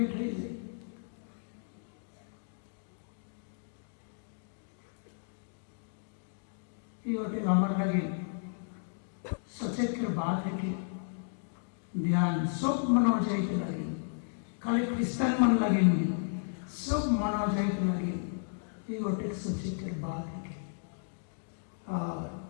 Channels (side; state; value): right; silent; digital silence